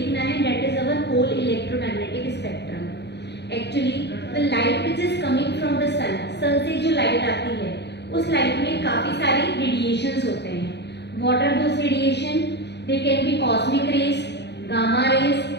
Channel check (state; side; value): late; right; 0.50 ms